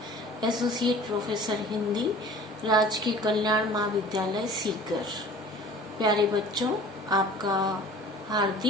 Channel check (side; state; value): both; normal; correlation 0.45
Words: associate professor Hindi, राजकीय कल्याण महाविद्यालय सीकर। प्यारे बच्चों, आपका